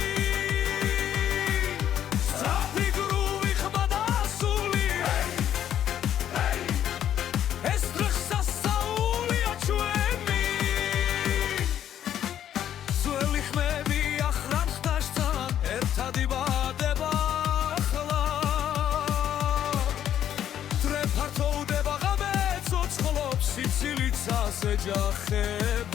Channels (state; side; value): quieter; right; 10.5 dB